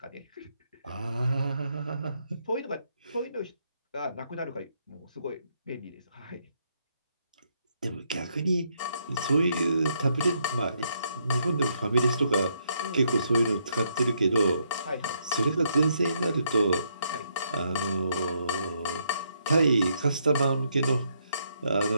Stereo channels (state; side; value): inverted; both; correlation -0.75